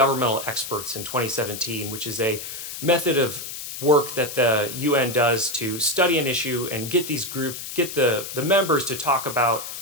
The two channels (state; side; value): noise; left; hiss, 8 dB below the sound